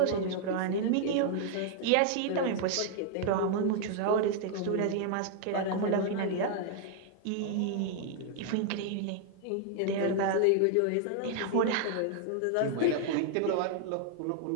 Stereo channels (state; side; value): different; both; correlation 0.00